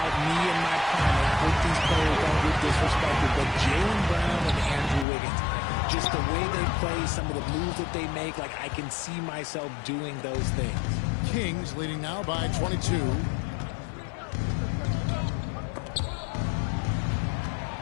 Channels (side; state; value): right; drops out; at 5.1 s